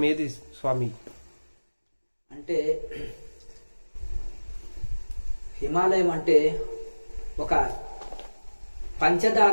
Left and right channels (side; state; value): both; inverted; correlation -1.00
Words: ఏది స్వామి? అంటే హిమాలయం అంటే ఒక